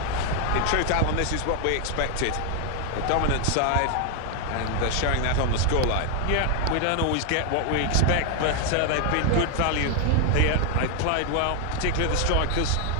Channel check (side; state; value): both; different; correlation 0.01